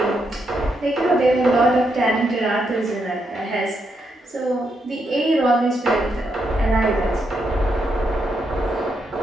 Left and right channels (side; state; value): both; normal; correlation 0.80